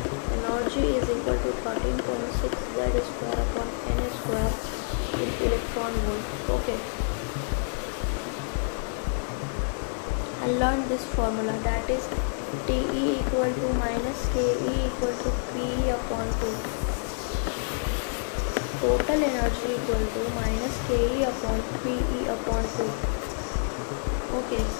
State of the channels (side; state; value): right; silent; 60 dB below the other